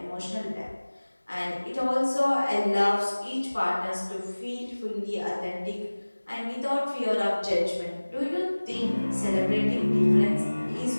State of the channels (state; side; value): inverted; both; correlation -1.00